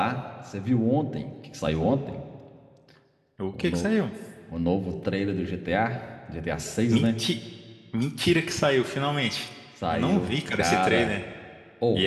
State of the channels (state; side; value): identical; both; correlation 1.00